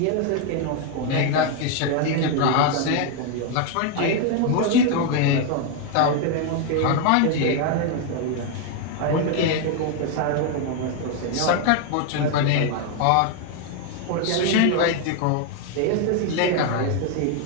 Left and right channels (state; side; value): different; both; correlation 0.01